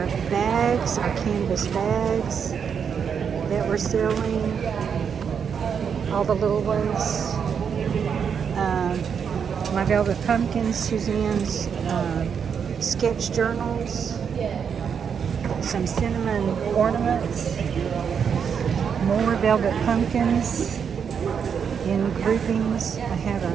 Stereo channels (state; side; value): quieter; left; 7.1 dB